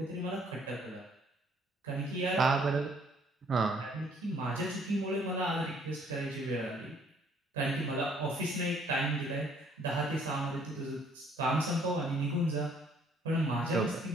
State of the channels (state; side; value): normal; both; correlation 0.62